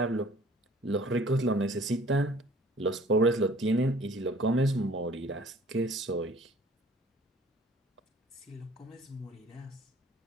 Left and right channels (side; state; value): both; normal; correlation 0.52